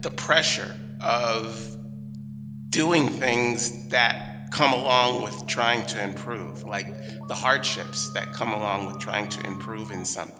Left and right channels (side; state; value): both; identical; correlation 1.00